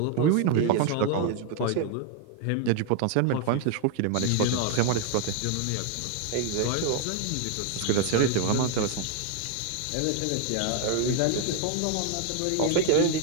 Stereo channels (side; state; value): both; different; correlation 0.01